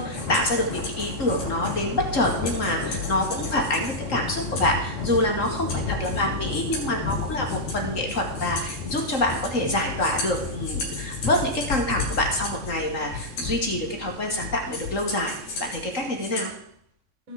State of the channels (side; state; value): right; late; 3.8 ms